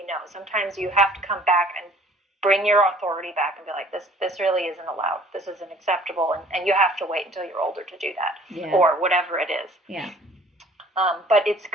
no. Sometimes you have to come back and bring your authority back and be like, this really isn't allowed. This isn't acceptable, and you have to wait until you're older to do that, or whatever it is. Yeah. But it's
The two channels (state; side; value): normal; both; correlation 0.53